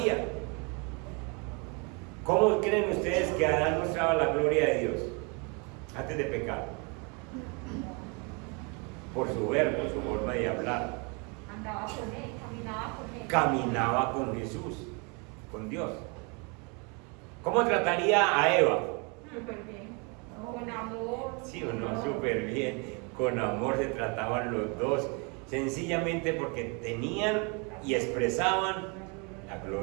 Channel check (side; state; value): left; quieter; 32.3 dB